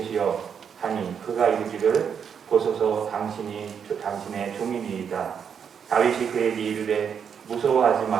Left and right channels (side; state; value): left; quieter; 7.3 dB